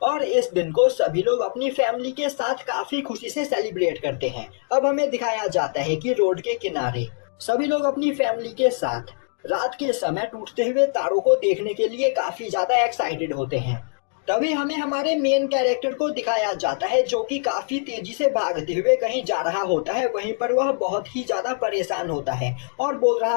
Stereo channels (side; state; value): right; silent; 60 dB below the other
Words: और इस दिन को सभी लोग अपनी फैमिली के साथ काफी खुशी से सेलिब्रेट करते हैं। अब हमें दिखाया जाता है कि रोड के किनारे सभी लोग अपनी फैमिली के साथ रात के समय टूटते हुए तारों को देखने के लिए काफी ज्यादा एक्साइटेड होते हैं। तभी हमें हमारे मेन कैरेक्टर को दिखाया जाता है जो कि काफी तेजी से भागते हुए कहीं जा रहा होता है। वहीं पर वह बहुत ही ज्यादा परेशान होता है और बोल रहा